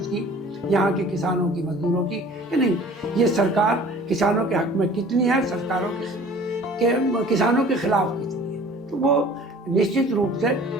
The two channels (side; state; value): both; normal; correlation 0.48